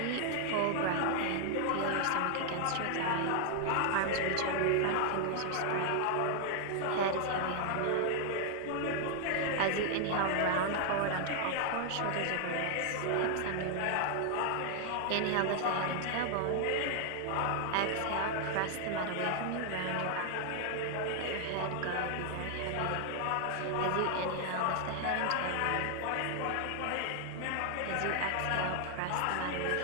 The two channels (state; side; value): different; both; correlation 0.00